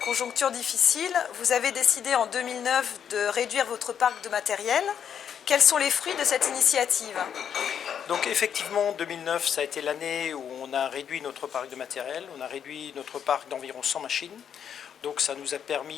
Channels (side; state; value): right; quieter; 8.4 dB